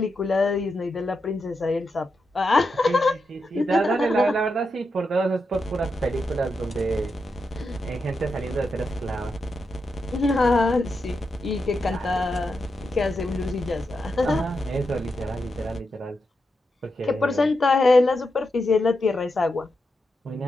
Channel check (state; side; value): normal; both; correlation 0.86